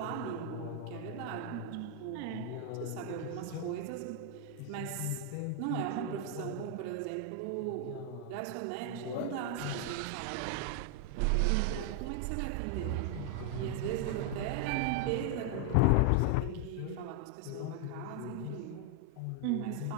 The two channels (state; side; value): different; both; correlation 0.00